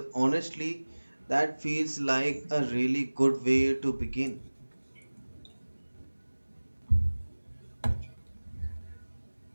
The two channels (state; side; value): inverted; both; correlation -1.00